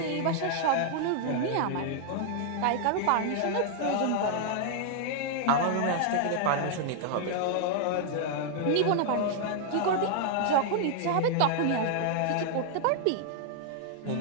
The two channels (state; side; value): different; both; correlation -0.01